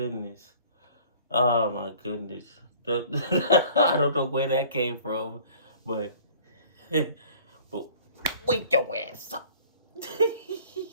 Oh my goodness. I don't know where that came from, but but wake your ass up.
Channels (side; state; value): both; inverted; correlation -0.50